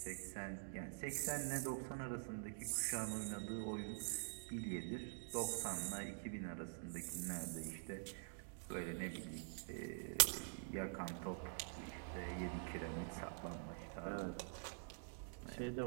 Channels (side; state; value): left; silent; digital silence